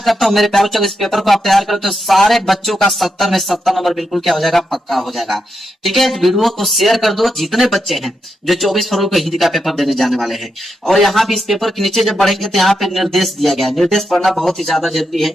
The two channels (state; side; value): normal; both; correlation 0.84